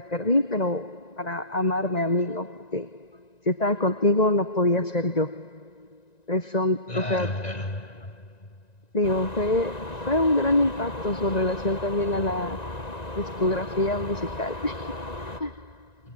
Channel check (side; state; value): right; late; 1.9 ms